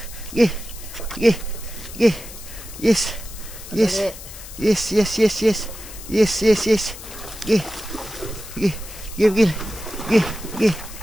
Gay. Gay. Gay. Yes. Yes. Yes, yes, yes, yes. Yes, yes, yes. Gay. Gay. Gay, gay. Gay. Gay.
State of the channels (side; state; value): left; noise; hiss, 14 dB below the sound